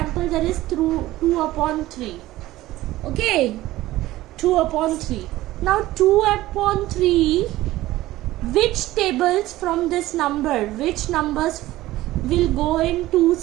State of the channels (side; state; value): left; quieter; 16.5 dB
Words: there is 2 upon 3. Okay, 2 upon 3. Now 2 upon 3, which tables from this number, which numbers will go in